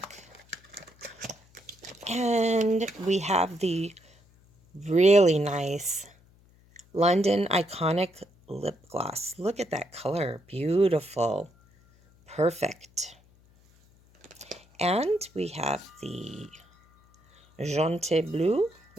And we have the really nice London Iconic Lip Gloss. Look at that color. Beautiful. Perfect. And we have the Jaunty Bleu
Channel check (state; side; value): noise; left; hum, 30 dB below the sound